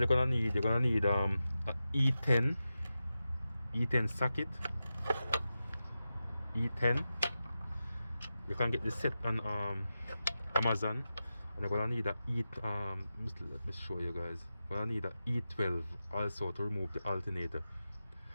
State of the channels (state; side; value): inverted; both; correlation -0.92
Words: gonna need a E10 socket. E10, you can get this set on Amazon, and you're gonna need a let me show you guys. You're gonna need a E12 also to remove the alternator.